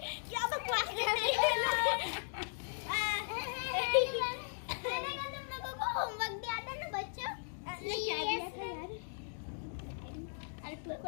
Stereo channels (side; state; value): right; silent; digital silence